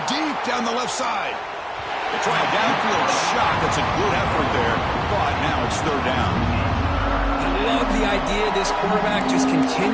deep down the left side. They try a downfield shot. That's a good effort there, but now it's third down. I love the idea of this quarterback just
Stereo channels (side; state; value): both; identical; correlation 1.00